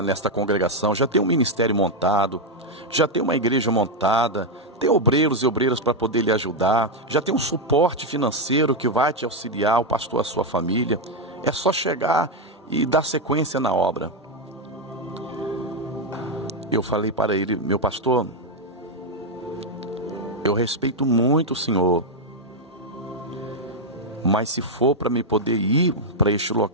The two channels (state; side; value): normal; both; correlation 0.03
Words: nesta congregação, já tem um ministério montado, já tem uma igreja montada, tem obreiros e obreiras para poder lhe ajudar, já tem um suporte financeiro que vai te auxiliar, o pastor, a sua família. É só chegar e dar sequência na obra. Eu falei para ele: meu pastor, eu respeito muito o senhor, mas se for para me poder ir para este